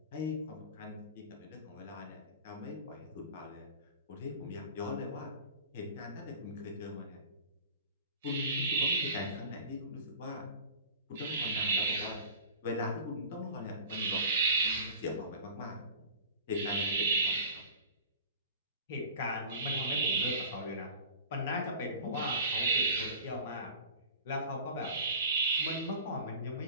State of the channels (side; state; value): both; inverted; correlation -0.40